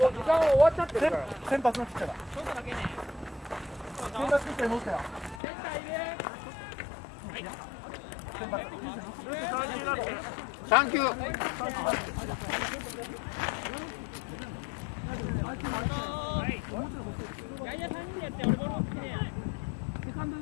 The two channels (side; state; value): right; drops out; at 5.4 s